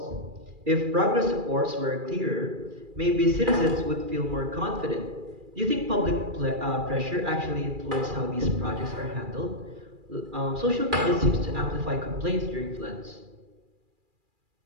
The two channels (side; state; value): left; late; 2.4 ms